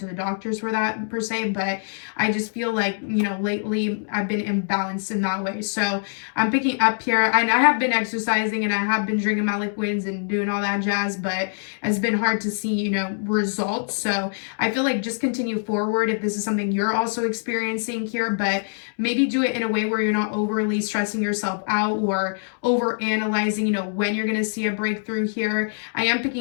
to the doctors for that per se, but I just feel like, you know, lately I've been imbalanced in that way. So I'm picking up here, and I have been exercising and I have been drinking my liquids and doing all that jazz, but it's been hard to see, you know, results. So I feel like just continue forward if this is something you're also experiencing here, but maybe do it in a way where you're not overly stressing yourself out or over analyzing, you know, when you're going to see a breakthrough here. I am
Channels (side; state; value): right; silent; 63 dB below the other